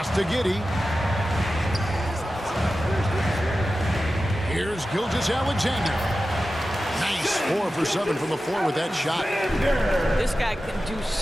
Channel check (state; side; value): normal; both; correlation 0.93